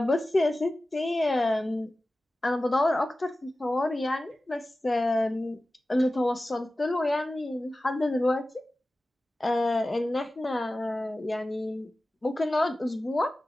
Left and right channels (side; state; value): both; normal; correlation 0.95